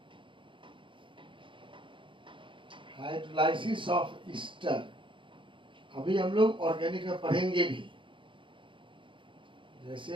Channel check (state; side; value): late; left; 0.24 ms